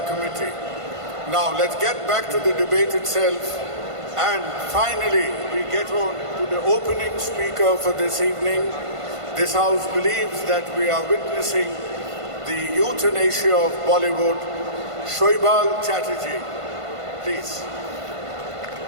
committee. Now let's get back to the debate itself, and finally we get on to the opening speaker for this evening. This house believes that we are witnessing the euthanasia of Bollywood. Shoibal Chatterjee, please.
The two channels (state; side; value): late; left; 1.5 ms